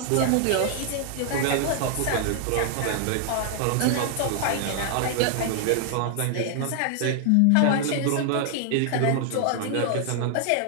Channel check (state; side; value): different; both; correlation 0.00